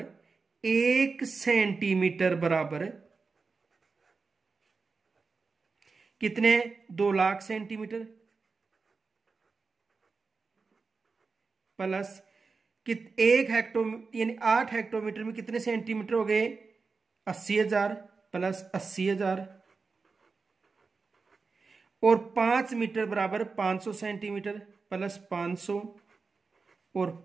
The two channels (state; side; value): quieter; left; 4.5 dB